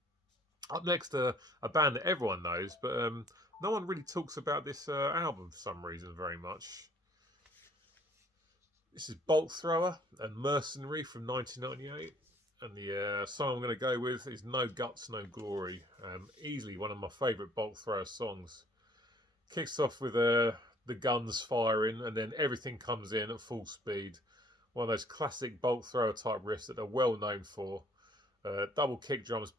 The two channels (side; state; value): both; normal; correlation 0.58